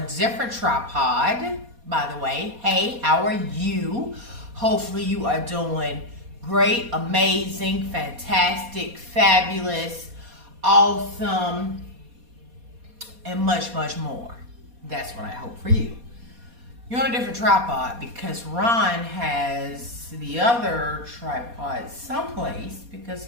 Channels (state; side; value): late; left; 4.2 ms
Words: different tripod, by the way. Hey, how are you? Hopefully you are doing great, amazing, fantastic, fabulous, awesome, and much, much more. That's what I hope for you. You're on a different tripod because Ron has the other tripod someplace because